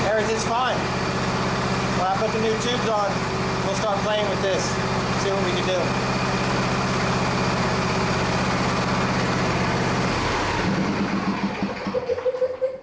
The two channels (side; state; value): both; identical; correlation 1.00